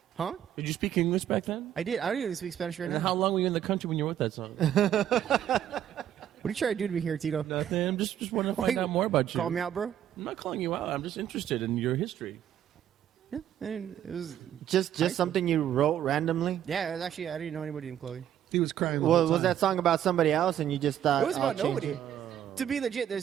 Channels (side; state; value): left; quieter; 10.6 dB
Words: huh? Did you speak English back then? I did. I don't even speak Spanish right And now. how long were you in the country when you wrote that song? What are you trying to do to me here, Tito? Nothing. I'm just wanting to find out more about you. Call me out, bro. I'm not calling you out. I'm just interested in your history. Yeah, and it was. just something you wrote randomly? Yeah, it was actually. I didn't know anybody named Chloe. He was crying. The Well, whole was time. that song about somebody else and you just thought It was I'll about change nobody. it? To be legit,